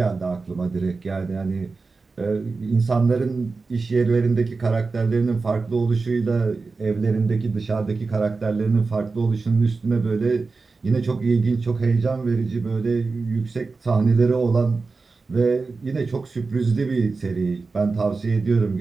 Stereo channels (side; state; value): left; quieter; 4.1 dB